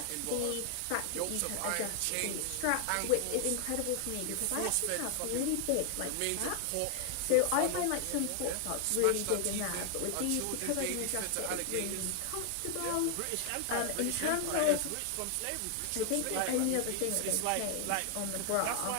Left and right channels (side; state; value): both; different; correlation 0.00